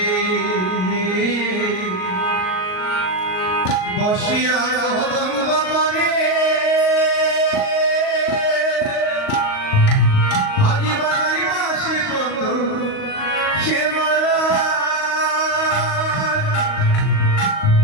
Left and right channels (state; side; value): late; right; 38 ms